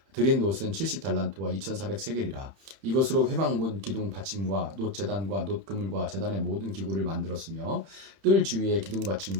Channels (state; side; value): late; left; 31 ms